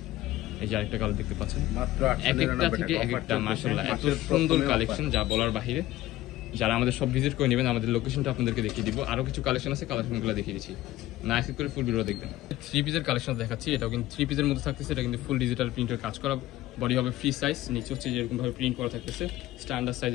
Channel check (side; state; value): right; quieter; 15.7 dB